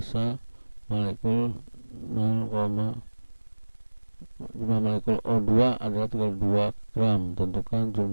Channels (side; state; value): both; inverted; correlation -1.00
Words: molekul jumlah molekul O2 adalah 32 gram. Tentukan